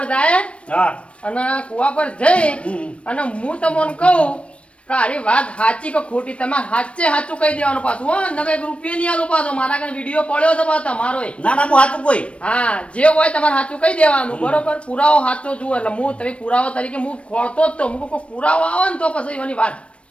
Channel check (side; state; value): right; late; 0.061 ms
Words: જાય હા અને કુવા પર જઈ હમ. અને હું તમને કહું કે આરી વાત સાચી કે ખોટી તમારે સાચે સાચું કહી દેવાનું પાછું હો નકર 1 રૂપિયા નહીં આલો પાછો મારા કને વિડીયો પડ્યો છે પાછો તમારો ના ના હું હાથું કોઈ હા જે હોય તમારે સાચું કહી દેવાનું બરોબર પુરાવો સાચો જુઓ એટલે હું તમે પુરાવો તરીકે હું ખોળતો જ તો હું કોઈ પુરાવો આવે ને તો પછી એવાની વાત